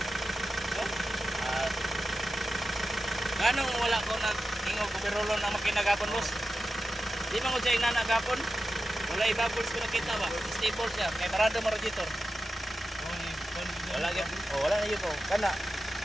At ganong wala ko na ingog ko pirolon na makinagapon boss. Di man ko siya inanagapon. Wala i-bubbles ko nakita ba. Stable siya. Kaya parado mo radiator. Wala yun. Wala na yun po. Kana.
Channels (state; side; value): normal; both; correlation 0.92